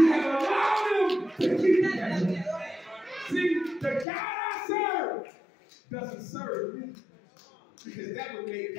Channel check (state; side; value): drops out; right; at 4.0 s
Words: have allowed them to keep it that way. See, the God I serve doesn't serve me, because that would make